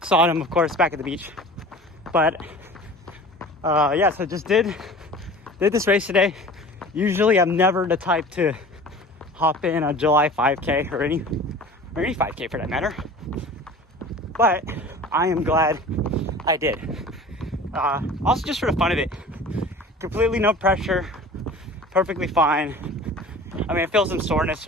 Saw them, of course, back at the beach. But yeah, so just did this race today. Usually I'm never the type to hop in a July 5K or any 5K for that matter. But I am glad I did. Also just for the fun of it. Completely no pressure. Perfectly fine. I mean, I feel some soreness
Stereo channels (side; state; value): both; normal; correlation 0.41